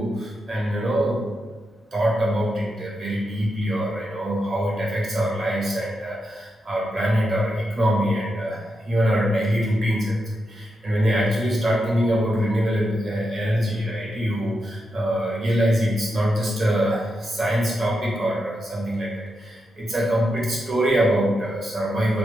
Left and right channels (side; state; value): both; normal; correlation 0.86